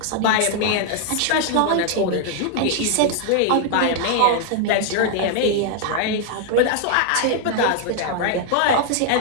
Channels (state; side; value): different; both; correlation 0.00